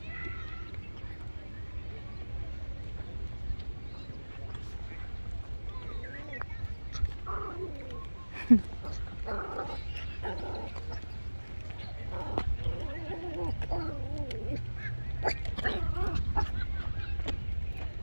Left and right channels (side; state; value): both; inverted; correlation -1.00